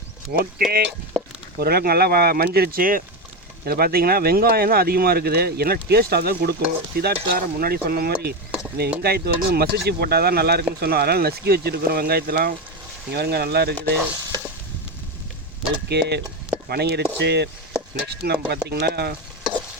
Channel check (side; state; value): both; normal; correlation 0.14